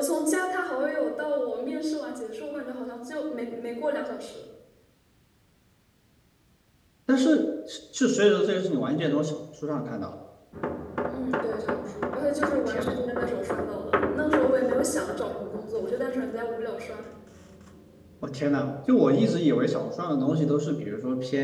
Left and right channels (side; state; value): both; identical; correlation 1.00